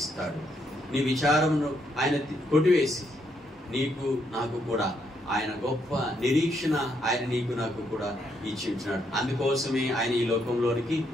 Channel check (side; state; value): both; normal; correlation 0.75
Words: నీ విచారమును ఆయన కొట్టివేసి నీకు నాకు కూడా ఆయన గొప్ప నిరీక్షణ ఆయన నీకు నాకు కూడా ఇచ్చి ఉంటున్నాడు. అందుకోసమే ఆయన ఈ లోకంలోనికి